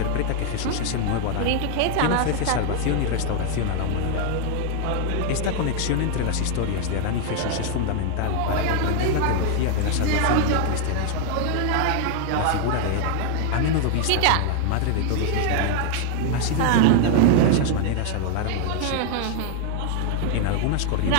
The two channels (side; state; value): both; different; correlation 0.00